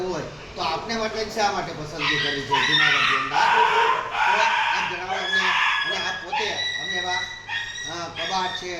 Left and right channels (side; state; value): both; identical; correlation 1.00